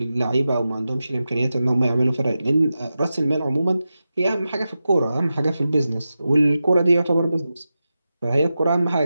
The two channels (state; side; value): inverted; both; correlation -0.92